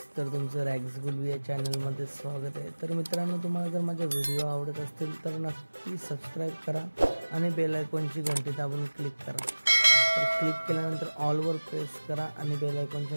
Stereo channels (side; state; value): both; inverted; correlation -1.00